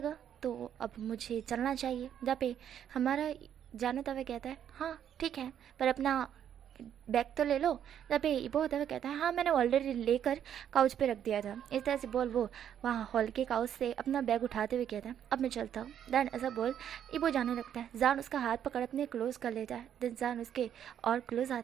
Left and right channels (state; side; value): quieter; left; 9.6 dB